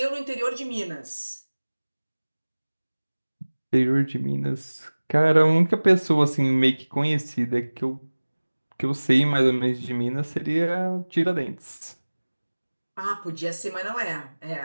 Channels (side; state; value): both; inverted; correlation -1.00